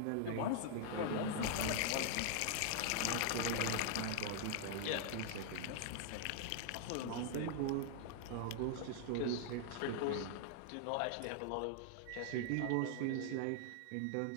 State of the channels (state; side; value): different; both; correlation 0.00